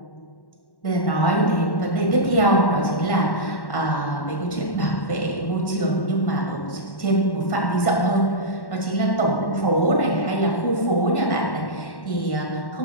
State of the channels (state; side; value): late; right; 1.1 ms